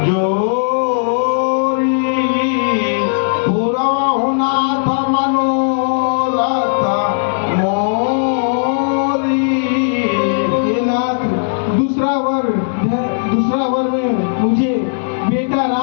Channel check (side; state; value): right; silent; digital silence